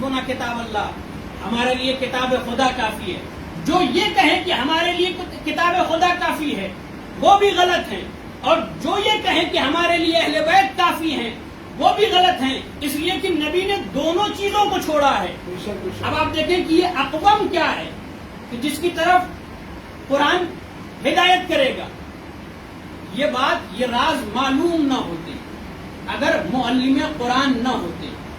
کتاب اللہ، ہمارے لیے کتاب خدا کافی ہے، جو یہ کہیں کہ ہمارے لیے کتاب خدا کافی ہے وہ بھی غلط ہیں، اور جو یہ کہیں کہ ہمارے لیے اہل بیت کافی ہیں وہ بھی غلط ہیں. اس لیے کہ نبی نے دونوں چیزوں کو چھوڑا ہے. اب آپ دیکھیں کہ یہ اقوام کیا ہے کہ جس کی طرف قرآن ہدایت کرے گا. یہ بات، یہ راز معلوم نہ ہوتے اگر معلم قرآن نہ ہوتے.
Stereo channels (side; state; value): both; identical; correlation 1.00